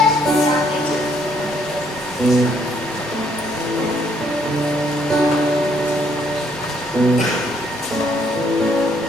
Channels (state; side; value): normal; both; correlation 0.68